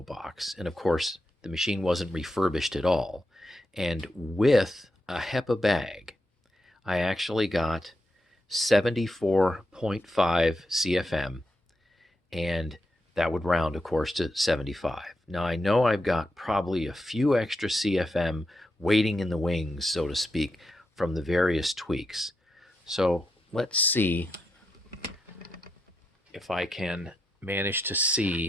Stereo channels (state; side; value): normal; both; correlation 0.84